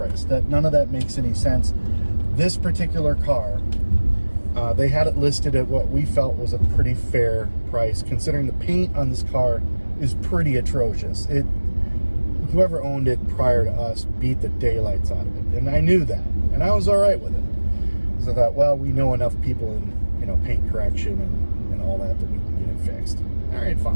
That none of that makes any sense. This particular car, they had it listed at what we felt was a pretty fair price, considering the paint on this car is pretty atrocious. Whoever owned it prior to us beat the daylights out of it, and I knew that, and I was all right with it. So I thought, well, we know enough people in paint correction and all that we can get it fixed. All right,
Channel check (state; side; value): inverted; both; correlation -1.00